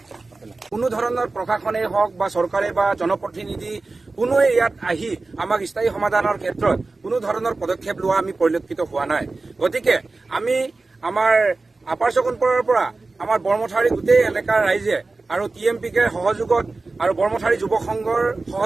ধৰণৰ প্ৰশাসনেই হওক বা চৰকাৰে বা জনপ্ৰতিনিধি কোনোৱে ইয়াত আহি আমাক স্থায়ী সমাধানৰ ক্ষেত্ৰত কোনো ধৰণৰ পদক্ষেপ লোৱা আমি পৰিলক্ষিত হোৱা নাই। গতিকে আমি আমাৰ আপাৰ চকনপুৰৰ পৰা আমাৰ বৰমথাৰী গোটেই এলেকাৰ ৰাইজে আৰু TMPকে সহযোগত আৰু বৰমথাৰী যুৱ সংঘৰ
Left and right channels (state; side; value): quieter; left; 3.6 dB